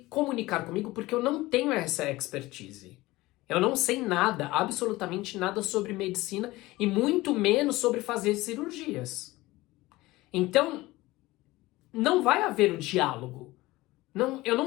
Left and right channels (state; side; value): quieter; right; 19.3 dB